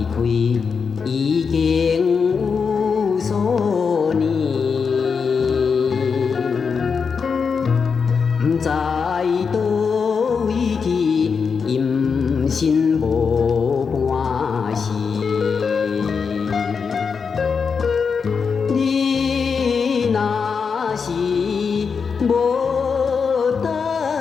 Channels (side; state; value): right; quieter; 5.7 dB